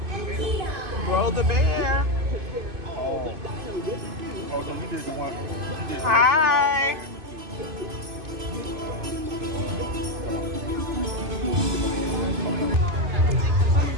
Roll the bear. Hi.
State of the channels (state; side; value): late; left; 2.5 ms